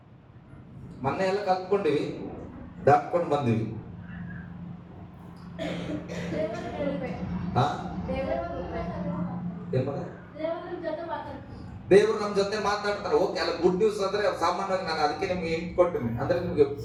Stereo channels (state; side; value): identical; both; correlation 1.00